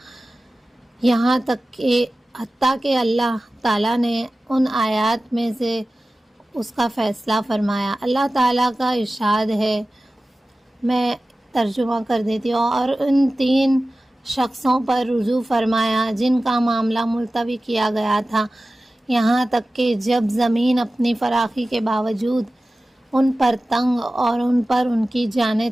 یہاں تک کہ حتیٰ کہ اللہ تعالیٰ نے ان آیات میں سے اس کا فیصلہ فرمایا۔ اللہ تعالیٰ کا ارشاد ہے، میں ترجمہ کر دیتی ہوں، اور ان 3 شخصوں پر رجوع فرمایا جن کا معاملہ ملتوی کیا گیا تھا، یہاں تک کہ جب زمین اپنی فراخی کے باوجود ان پر تنگ اور ان پر ان کی جانیں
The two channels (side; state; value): both; normal; correlation 0.96